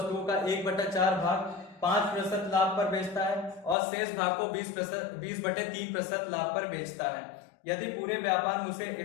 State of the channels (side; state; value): right; drops out; at 3.8 s